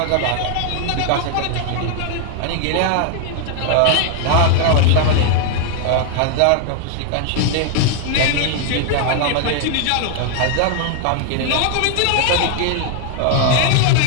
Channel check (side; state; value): both; different; correlation 0.00